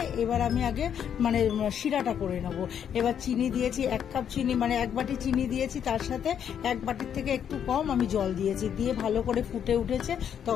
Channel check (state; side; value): quieter; right; 8.7 dB